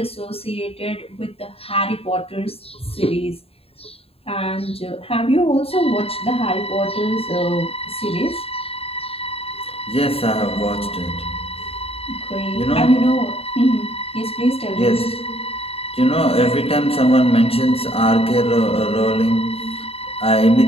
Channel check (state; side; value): late; right; 0.28 ms